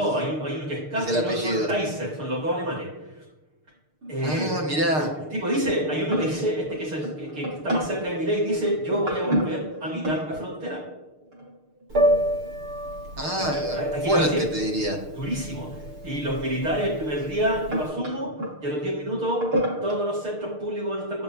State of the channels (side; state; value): left; late; 6.6 ms